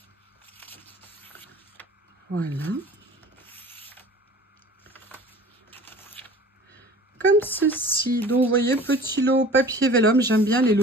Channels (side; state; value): both; normal; correlation 0.44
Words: Voilà. Comme ceci. Donc, vous voyez, petit lot papier vélum. J'aime bien les